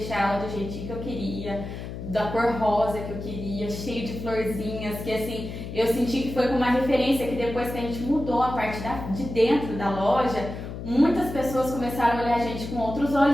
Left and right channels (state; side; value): noise; left; hum, 8 dB below the sound